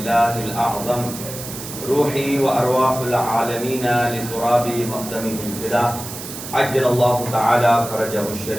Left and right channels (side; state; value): right; noise; hiss, 10 dB below the sound